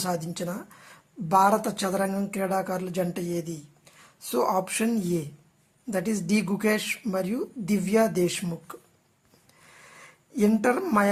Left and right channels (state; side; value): identical; both; correlation 1.00